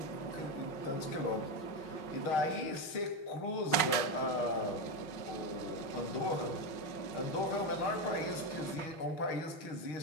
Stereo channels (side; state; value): right; late; 5.5 ms